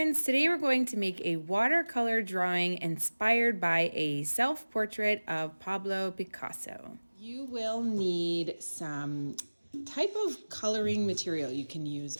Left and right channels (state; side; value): inverted; both; correlation -1.00